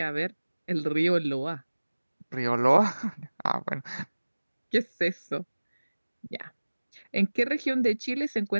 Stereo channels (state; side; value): inverted; both; correlation -1.00